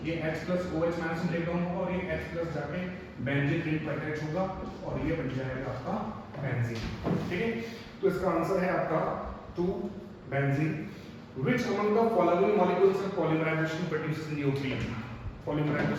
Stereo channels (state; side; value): identical; both; correlation 1.00